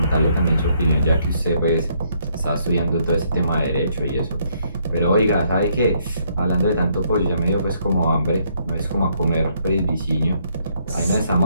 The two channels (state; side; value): inverted; both; correlation -0.70